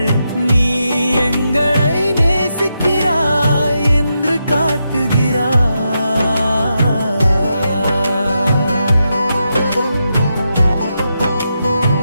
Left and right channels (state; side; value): inverted; both; correlation -0.85